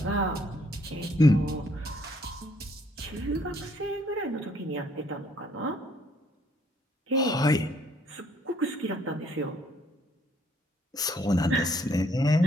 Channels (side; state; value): both; normal; correlation 0.65